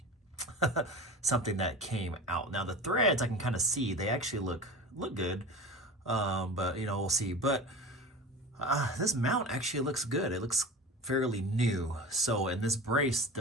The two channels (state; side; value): normal; both; correlation 0.32